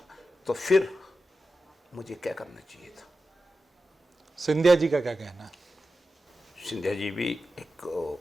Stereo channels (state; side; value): normal; both; correlation 0.92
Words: तो फिर मुझे क्या करना चाहिए था? सिंधिया जी का क्या कहना है? सिंधिया जी भी एक,